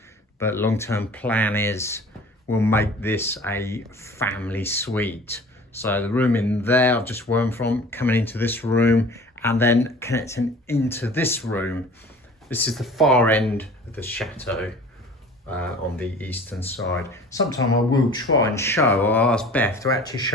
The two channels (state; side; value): normal; both; correlation 0.44